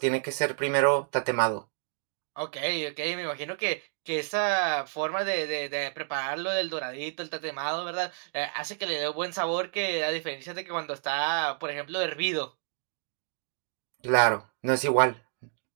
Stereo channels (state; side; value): silent; left; digital silence